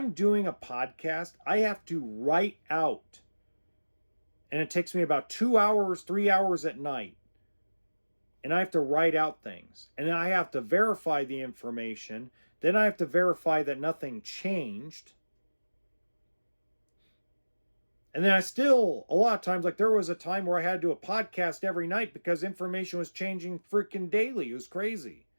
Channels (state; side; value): inverted; both; correlation -1.00